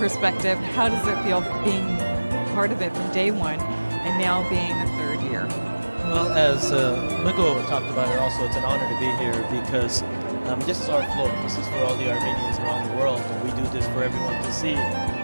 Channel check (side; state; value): both; inverted; correlation -1.00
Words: how does it feel being part of it from day one and now being the third year? Well, as Migo talked about it also, it's an honor to be here because this is our float. This is for all the Armenians around the world, and we do this for everyone to see